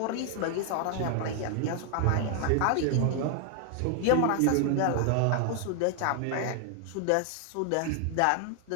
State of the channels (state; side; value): different; both; correlation 0.00